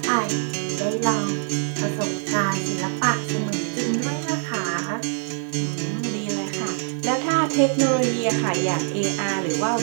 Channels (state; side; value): silent; left; 63 dB below the other